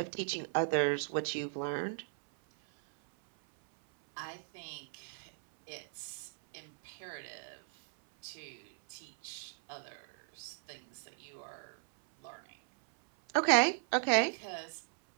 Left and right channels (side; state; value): left; silent; 53 dB below the other